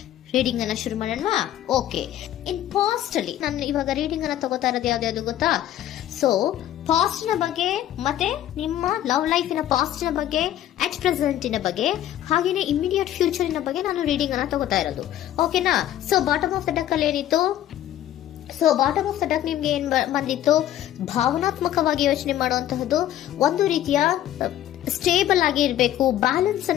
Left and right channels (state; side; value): quieter; right; 12.3 dB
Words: ರೀಡಿಂಗ್ ಅನ್ನ ಶುರು ಮಾಡೋಣ. ಓಕೆ, ಇನ್ ಪಾಸ್ಟ್ ಅಲ್ಲಿ ನಾನು ಇವಾಗ ರೀಡಿಂಗ್ ಅನ್ನ ತಗೋತಾ ಇರೋದು ಯಾವ್ದು ಗೊತ್ತಾ? ಸೊ ಪಾಸ್ಟ್ ನ ಬಗ್ಗೆ ಮತ್ತೆ ನಿಮ್ಮ ಲವ್ ಲೈಫಿನ ಪಾಸ್ಟ್ ನ ಬಗ್ಗೆ, ಅಟ್ ಪ್ರೆಸೆಂಟಿನ ಬಗ್ಗೆ, ಹಾಗೇನೆ ಇಮಿಡಿಯೇಟ್ ಫ್ಯೂಚರಿನ ಬಗ್ಗೆ ನಾನು ರೀಡಿಂಗ್ ಅನ್ನ ತಗೋತಾ ಇರೋದು. ಓಕೆನಾ? So bottom of the duck ಅಲ್ಲಿ ಏನಿತ್ತು? So bottom of the duck ನಿಮ್ಗೆ ಏನ್ ಬಂದಿತ್ತು? ಭಾವನಾತ್ಮಕವಾಗಿ ಯೋಚನೆ ಮಾಡುವಂತಹದ್ದು, ಒಂದು ರೀತಿಯ ಸ್ಟೇಬಲ್ ಆಗಿ ಇರಬೇಕು, ಬ್ಯಾಲೆನ್ಸ್